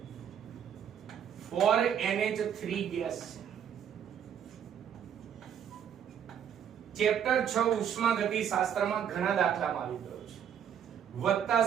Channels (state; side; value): quieter; left; 8.8 dB